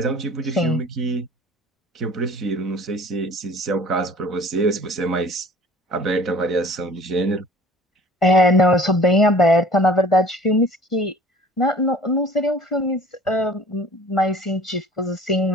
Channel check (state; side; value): normal; both; correlation 0.49